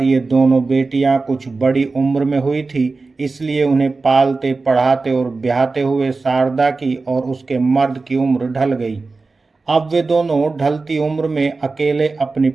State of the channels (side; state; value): left; quieter; 3.9 dB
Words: ये दोनों बेटियां कुछ बड़ी उम्र में हुई थी, इसलिए उन्हें पालते पढ़ाते और ब्याहते हुए शारदा की और उसके मर्द की उम्र ढल गई। अब वे दोनों ढलती उम्र में अकेले अपनी